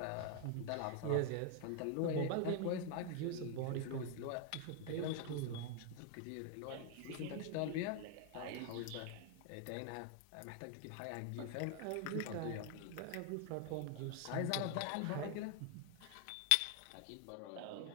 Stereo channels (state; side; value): different; both; correlation 0.00